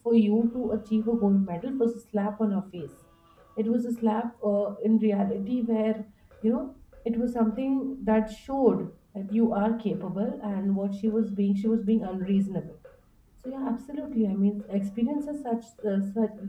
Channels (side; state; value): both; identical; correlation 1.00